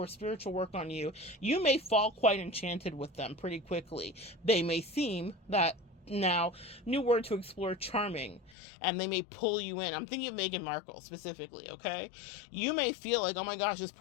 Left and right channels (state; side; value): drops out; right; at 8.6 s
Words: spiritual work on you, you may fall quite enchanted with them pretty quickly. They may seem that, now, new word to explore, charming, and they may pull you in. I'm thinking of Meghan Markle specifically, okay? You may feel like, oh my gosh, this